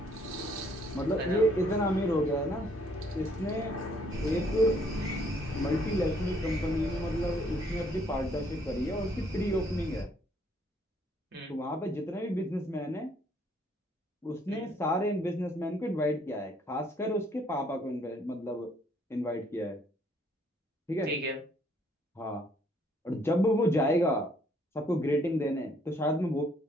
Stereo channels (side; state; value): both; normal; correlation 0.66